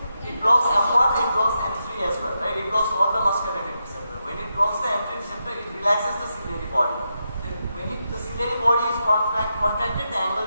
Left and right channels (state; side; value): inverted; both; correlation -0.86